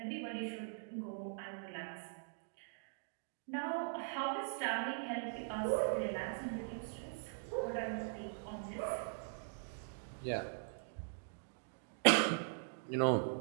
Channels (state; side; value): silent; left; digital silence